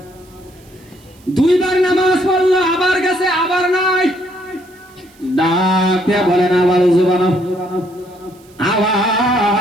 দুইবার নামাজ পড়লো আবার গেছে আবার নাই ডাক দিয়ে বলেন আবার ওযু বানাও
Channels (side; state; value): right; noise; hiss, 29 dB below the sound